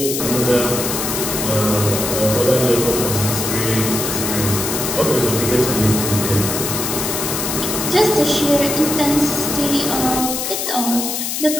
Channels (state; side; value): noise; left; hiss, 3 dB below the sound